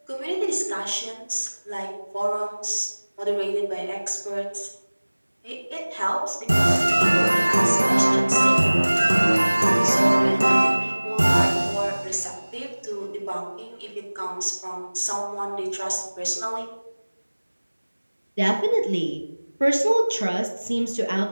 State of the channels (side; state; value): both; inverted; correlation -1.00